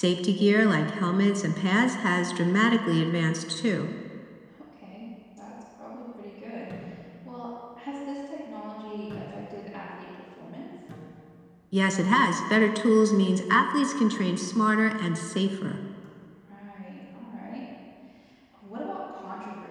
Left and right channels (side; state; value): both; identical; correlation 1.00